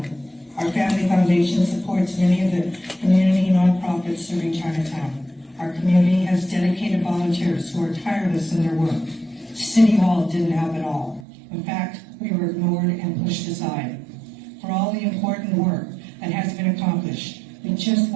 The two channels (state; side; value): drops out; left; at 11.2 s